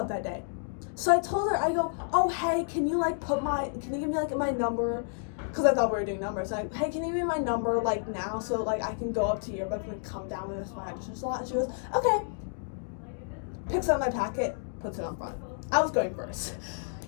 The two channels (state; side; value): silent; right; digital silence